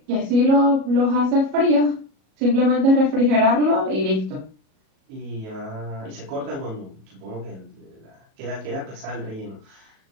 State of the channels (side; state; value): left; late; 37 ms